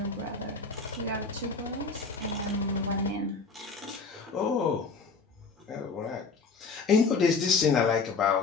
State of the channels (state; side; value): quieter; right; 4.4 dB